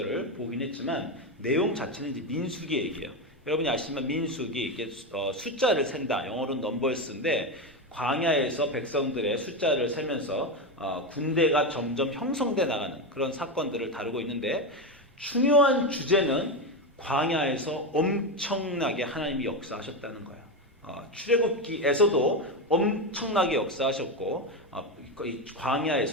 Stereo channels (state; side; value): normal; both; correlation 0.13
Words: 보긴 했지만 내용 자체는 이제 민수기 얘기예요. 여러분이 아시지만 민수기 이게 숫자를 센다, 영어로는 넘버스인데 광야에서 백성들의 숫자를 세면서 군대가 점점 형성돼 나가는 그런 사건들을 다루고 있는데, 중요한 주제는 광야에서 엄청나게 하나님이 역사하셨다는 거예요. 출애굽기에서도 엄청나게 역사하셨고 이